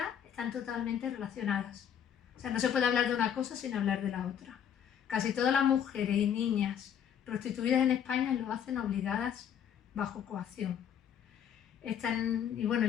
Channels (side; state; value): right; quieter; 8.9 dB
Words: están totalmente relacionadas. O sea, no se puede hablar de una cosa sin hablar de la otra. Casi todas las mujeres y niñas prostituidas en España lo hacen obligadas bajo coacción. Y bueno,